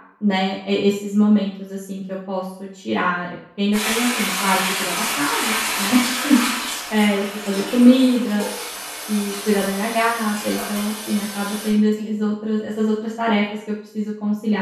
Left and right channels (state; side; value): identical; both; correlation 1.00